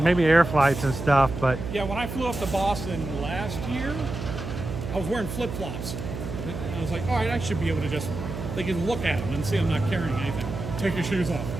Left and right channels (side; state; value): right; noise; hum, 7 dB below the sound